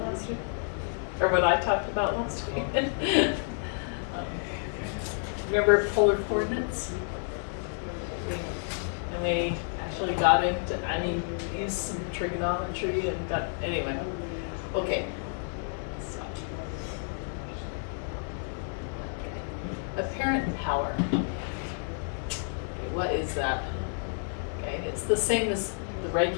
last week? Or what I talked about last week? Remember polar coordinates? And we actually got into, used some trigonometry and got, anyway. Okay. So. Apparent power. What is that? Okay, it's the same as the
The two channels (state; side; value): silent; right; 58 dB below the other